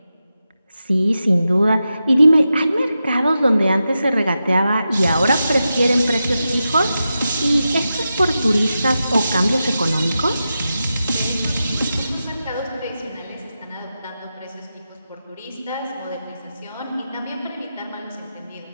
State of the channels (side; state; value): both; inverted; correlation -0.90